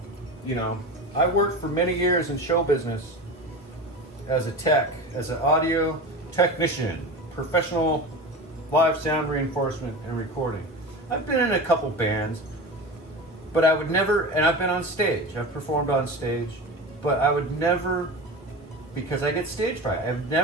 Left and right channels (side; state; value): both; normal; correlation 0.29